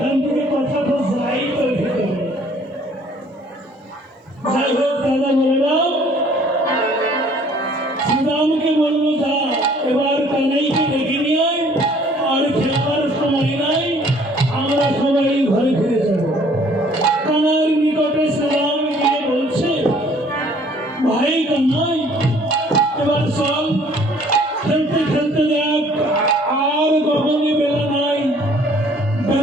থেকে কথাটা যাই তো ভিতরে। যাই হোক দাদা বললাম, শ্রীরামকে বললো যা এবার কানাইকে ডেকে নিয়ে আয়, আর খেলার সময় নাই, আমরা সবাই ঘরে ফিরে যাব। কানার নিকটে শ্রীরাম গিয়ে বলছে, ভাই কানাই এবার চল, খেলতে খেলতে দেখ আর গগনে বেলা নাই,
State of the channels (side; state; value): both; normal; correlation 0.57